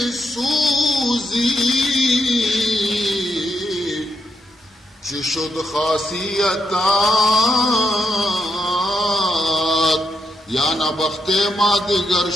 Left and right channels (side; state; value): both; normal; correlation 0.81